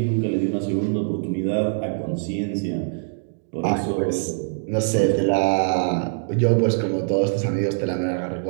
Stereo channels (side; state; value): left; silent; digital silence